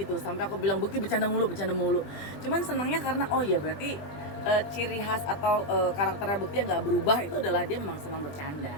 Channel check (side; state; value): right; late; 20 ms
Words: Sampai aku bilang Bekti bercanda mulu. Cuman senangnya karena oh ya berarti ciri khas atau karakternya Bekti yang nggak berubah itu adalah dia memang senang bercanda